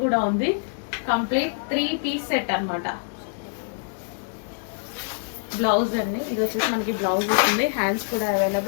కూడా ఉంది. కంప్లీట్ 3 పీస్ సెట్ అనమాట. బ్లౌజ్ అండి, ఇది వచ్చేసి మనకి బ్లౌజ్ వస్తుంది, హ్యాండ్స్ కూడా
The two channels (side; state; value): right; silent; 62 dB below the other